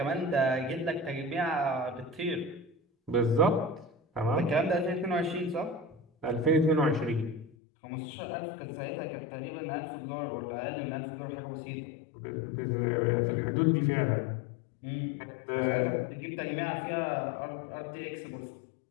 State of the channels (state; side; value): drops out; right; at 7.6 s